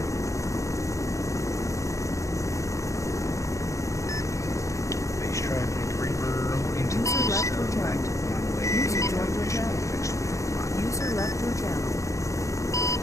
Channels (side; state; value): right; late; 0.15 ms